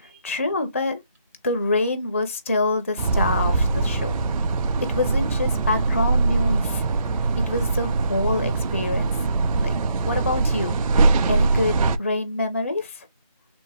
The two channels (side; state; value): both; inverted; correlation -0.74